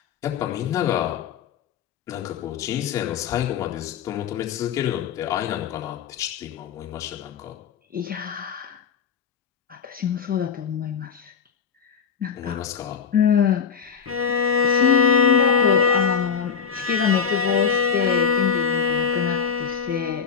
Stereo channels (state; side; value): quieter; right; 6.7 dB